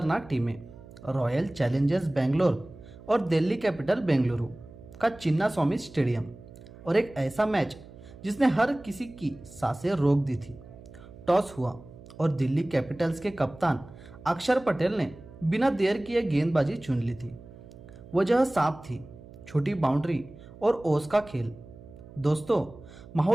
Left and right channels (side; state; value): right; noise; hum, 18 dB below the sound